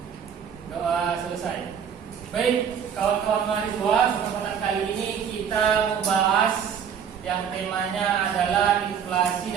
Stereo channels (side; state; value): left; quieter; 7.8 dB